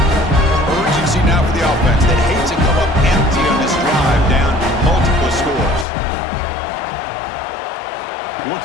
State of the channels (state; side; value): drops out; right; at 5.9 s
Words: Urgency now for the offense that hates to come up empty on this drive, down multiple scores.